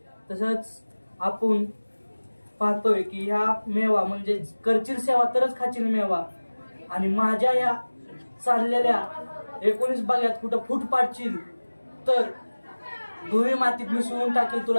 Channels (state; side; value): inverted; both; correlation -1.00